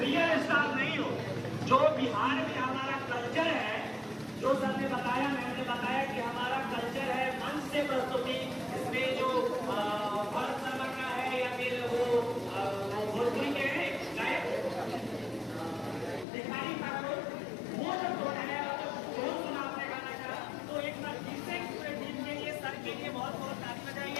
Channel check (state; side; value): drops out; right; at 16.2 s